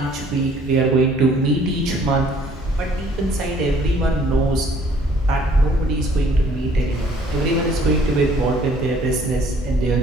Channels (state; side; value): normal; both; correlation 0.58